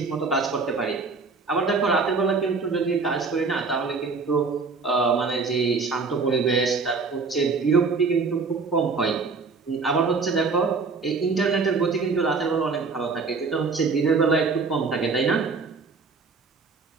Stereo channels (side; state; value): left; quieter; 4.5 dB